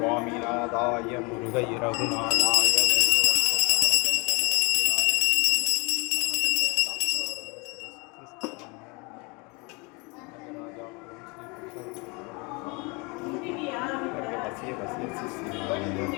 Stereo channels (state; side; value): quieter; right; 28.5 dB